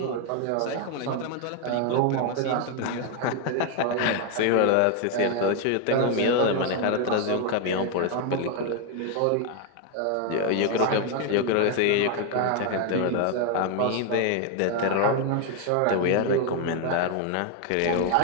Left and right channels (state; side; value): different; both; correlation 0.01